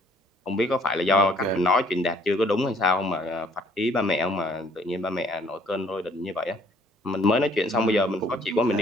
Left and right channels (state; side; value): normal; both; correlation 0.61